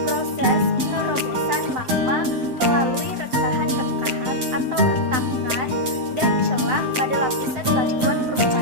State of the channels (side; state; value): left; late; 7.8 ms